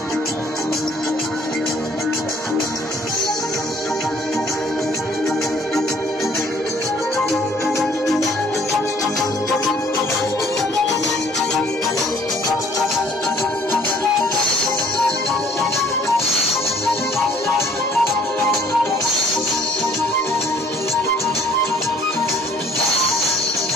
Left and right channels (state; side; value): normal; both; correlation 0.58